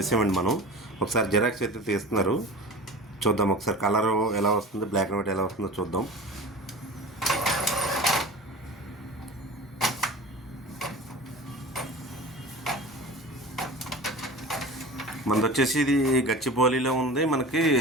మనం ఒకసారి జిరాక్స్ అయితే తీస్తున్నారు, చూద్దాం ఒకసారి. కలర్ ఎలా వస్తుంది, బ్లాక్ అండ్ వైట్ ఎలా వస్తుందో చూద్దాం. మనది వచ్చేసి ఇది గచ్చిబౌలిలో ఉంది. మనకి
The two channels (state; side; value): normal; both; correlation 0.36